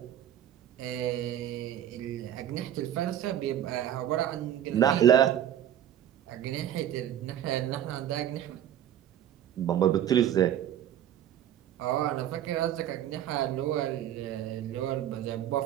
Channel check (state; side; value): quieter; left; 10.9 dB